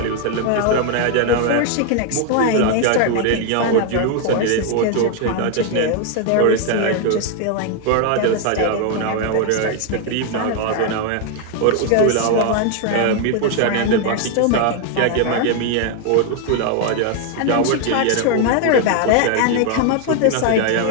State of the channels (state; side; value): different; both; correlation 0.01